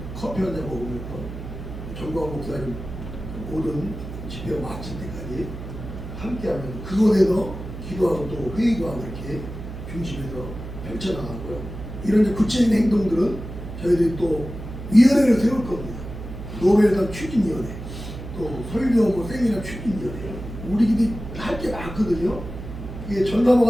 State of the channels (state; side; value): noise; right; hum, 10 dB below the sound